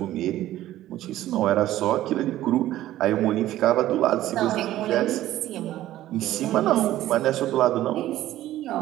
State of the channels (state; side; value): quieter; left; 14.2 dB